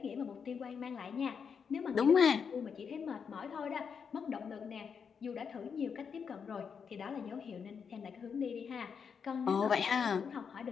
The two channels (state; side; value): quieter; right; 6.5 dB